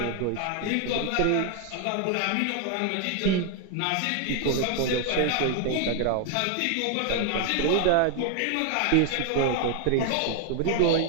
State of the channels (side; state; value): both; different; correlation 0.00